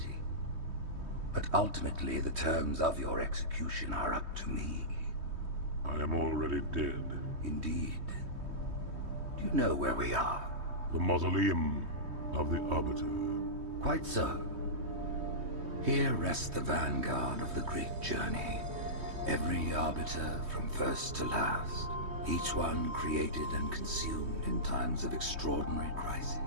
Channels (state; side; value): late; left; 3.2 ms